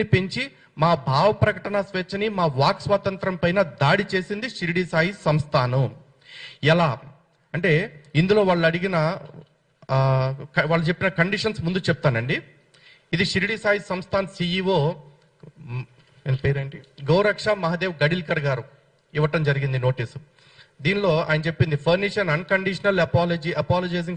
పెంచి మా భావ ప్రకటన స్వేచ్ఛని, మా వాక్ స్వాతంత్రం పైన దాడి చేసింది షిరిడీ సాయి సంస్థానం. ఎలా అంటే, ఇందులో వాళ్ళు అడిగిన వాళ్ళు చెప్పిన కండిషన్స్ ముందు చెప్తానండి. ఇది షిరిడీ సాయి సంస్థాన్ సిఇఓ పేరేంటి, గౌరక్ష మహాదేవ్ గడిల్కర్ గారు ఇవ్వటం జరిగింది నోటీసు. దీనిలో ఆయన చెప్పింది, furnish an unconditional apology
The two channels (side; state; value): both; identical; correlation 1.00